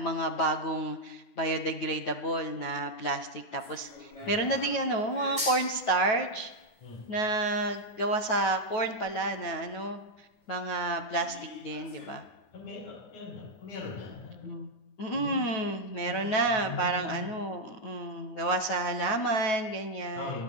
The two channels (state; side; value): late; right; 9.3 ms